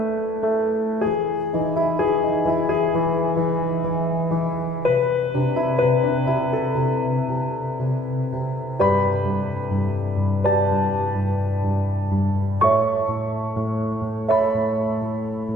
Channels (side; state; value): both; normal; correlation 0.62